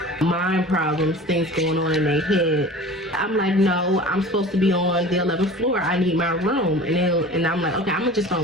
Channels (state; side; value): normal; both; correlation 0.40